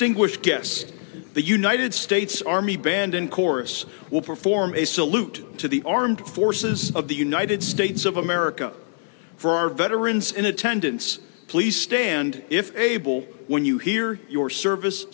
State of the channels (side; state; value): right; silent; digital silence